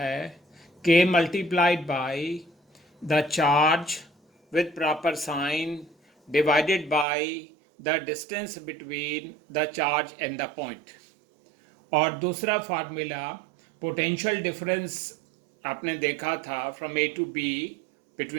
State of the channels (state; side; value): drops out; left; at 7.1 s